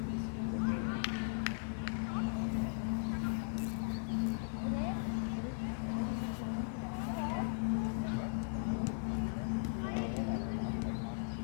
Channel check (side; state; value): right; silent; digital silence